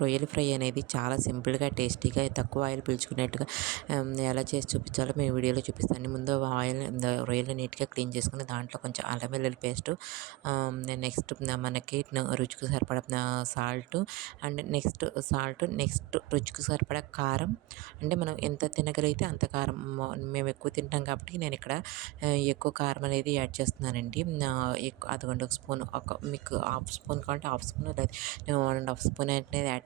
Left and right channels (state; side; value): quieter; left; 20.9 dB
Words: రొయ్యల ఫ్రై అనేది చాలా సింపుల్‌గా, టేస్టీగా, తక్కువ ఆయిల్ పీల్చుకునేట్టుగా ఎలా చేసి చూపించాలో మీ వీడియోలో చూపిస్తాను. ముందు రొయ్యలు నీట్‌గా క్లీన్ చేసుకొని దాంట్లో కొంచెం అల్లం వెల్లుల్లి పేస్టు, నెక్స్ట్ మనకి రుచికి సరిపడా సాల్టు, అండ్ నెక్స్ట్ రుచికి సరిపడా కారం. అంటే మనం ఎంత తినగలిగితే అంత కారం. మేము ఎక్కువ తింటాం కాబట్టి నేను ఇక్కడ ఎక్కువ కారం అనేది యాడ్ చేస్తున్నానండి. అదిగోండి ఒక స్పూన్, మీకు హాఫ్ స్పూన్ కావాలంటే హాఫ్ స్పూన్, లేదా 1½ స్పూన్ అనేది యాడ్